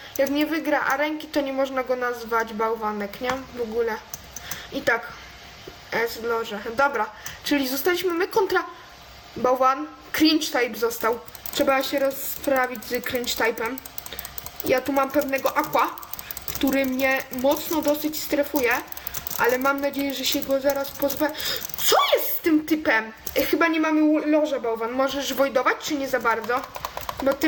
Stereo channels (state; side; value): identical; both; correlation 1.00